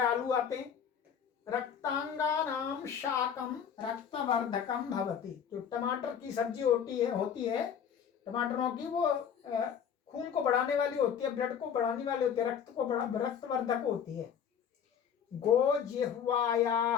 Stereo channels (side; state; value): right; quieter; 7.9 dB